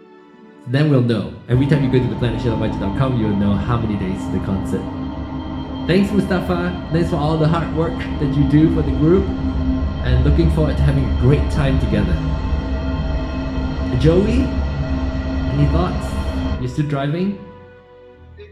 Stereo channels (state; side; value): identical; both; correlation 1.00